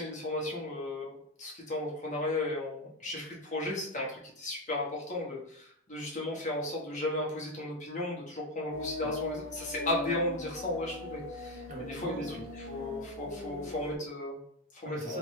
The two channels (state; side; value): normal; both; correlation 0.12